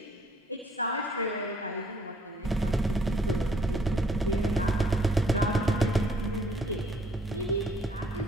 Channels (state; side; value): normal; both; correlation 0.63